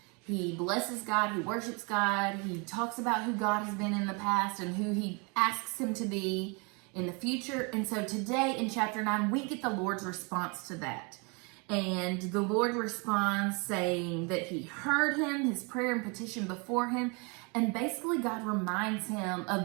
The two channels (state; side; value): quieter; left; 31.8 dB